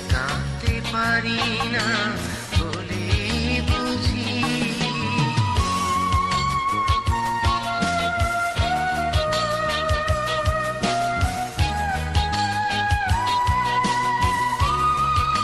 পারি না বলে বুঝি।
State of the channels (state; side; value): identical; both; correlation 1.00